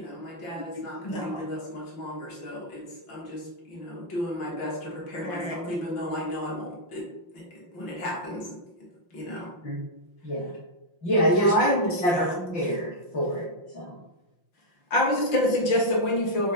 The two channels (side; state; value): right; late; 5.7 ms